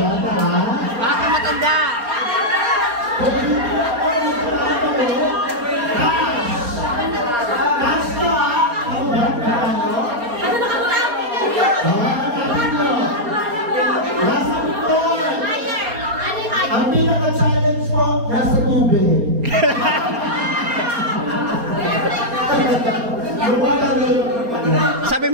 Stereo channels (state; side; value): late; left; 4.3 ms